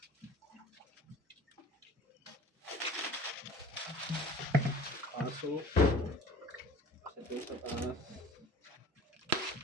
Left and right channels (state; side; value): normal; both; correlation 0.45